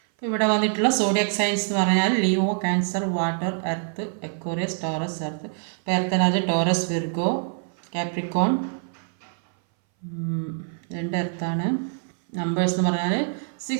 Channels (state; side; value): silent; left; 60 dB below the other